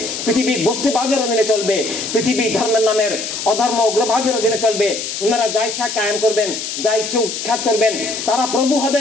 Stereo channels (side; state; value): left; noise; hiss, 5 dB below the sound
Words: পৃথিবী বস্তুবাদের অধীনে চলবে, পৃথিবী ধর্মের নামের অধর্ম উগ্রবাদের অধীনে চলবে। ওনারা যা ইচ্ছা কায়েম করবেন, যা ইচ্ছা উৎখাত করবেন। তারা প্রভু